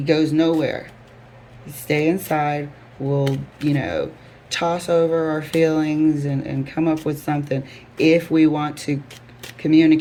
goes nowhere. He stay inside. We'll, you know, toss over our feelings and come up with something. If we want to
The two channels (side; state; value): both; identical; correlation 1.00